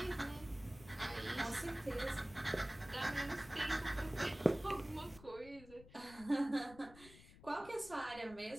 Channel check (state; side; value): noise; left; rumble, 19 dB below the sound